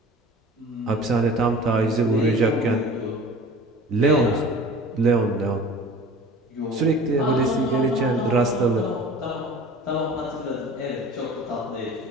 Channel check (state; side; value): normal; both; correlation 0.42